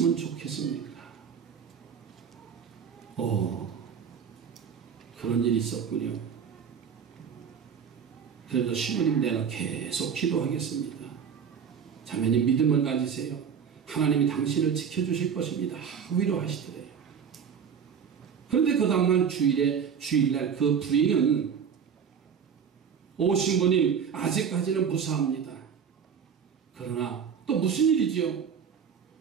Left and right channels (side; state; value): left; quieter; 7.3 dB